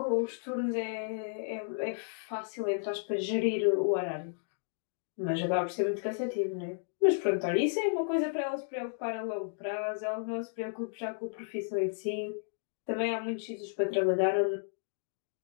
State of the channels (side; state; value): right; silent; digital silence